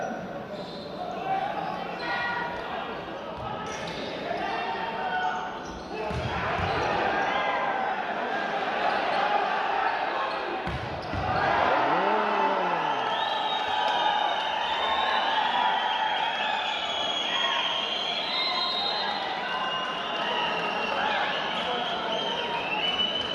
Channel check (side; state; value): both; identical; correlation 1.00